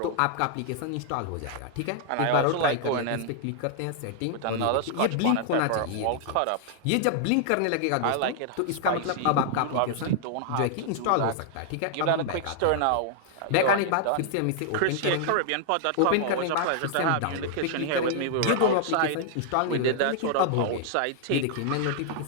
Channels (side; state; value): both; different; correlation -0.01